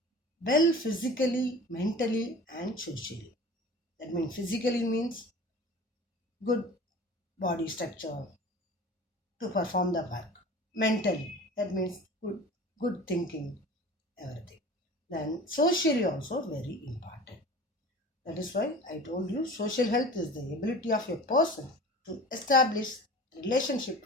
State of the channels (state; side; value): normal; both; correlation 0.39